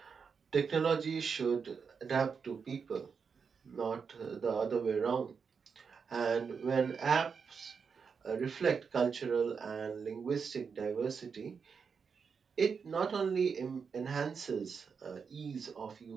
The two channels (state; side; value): quieter; left; 5.9 dB